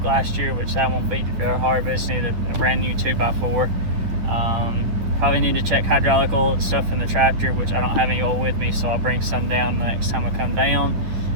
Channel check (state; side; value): late; left; 10 ms